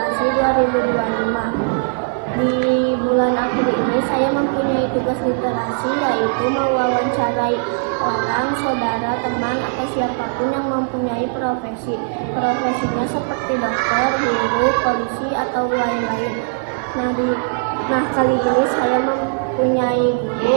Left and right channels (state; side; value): silent; left; 56 dB below the other